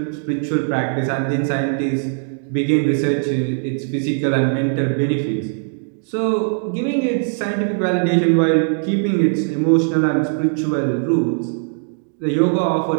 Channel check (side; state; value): left; silent; digital silence